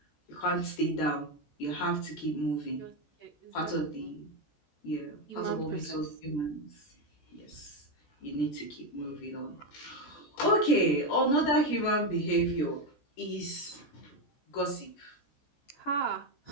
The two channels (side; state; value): right; late; 14 ms